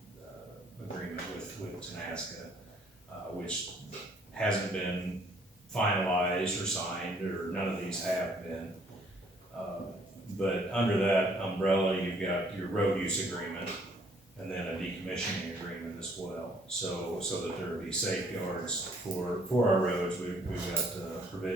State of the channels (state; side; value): normal; both; correlation 0.62